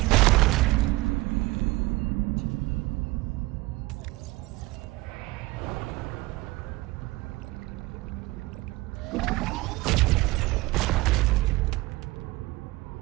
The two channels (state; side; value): quieter; left; 20.7 dB